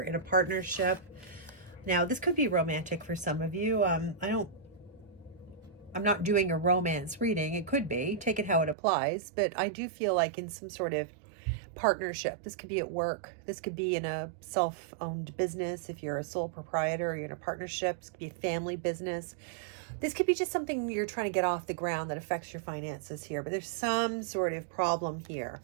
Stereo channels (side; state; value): left; drops out; at 8.8 s